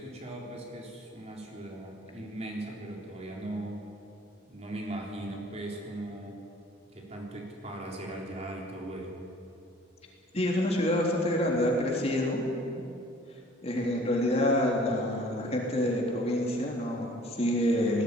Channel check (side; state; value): both; normal; correlation 0.53